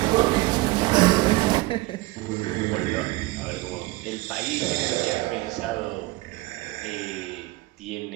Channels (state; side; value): quieter; left; 20.2 dB